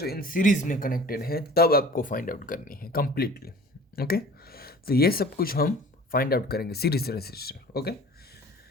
इन सीरीज में कनेक्टेड है तब आपको फाइंड आउट करनी है कंप्लीटली। ओके, तो ये सब कुछ हम फाइंड आउट करेंगे सीरीज रेजिस्टर। ओके,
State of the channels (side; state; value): both; normal; correlation 0.45